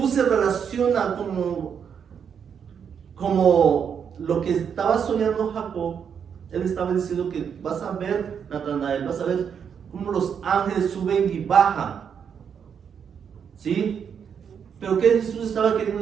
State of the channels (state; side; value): quieter; left; 7.4 dB